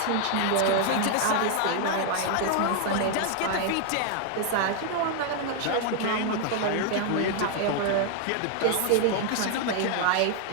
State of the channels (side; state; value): both; different; correlation 0.00